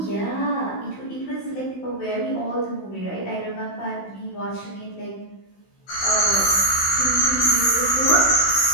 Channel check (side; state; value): right; late; 16 ms